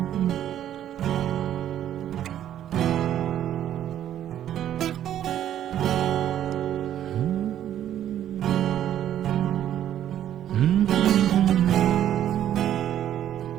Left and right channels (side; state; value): left; quieter; 11.1 dB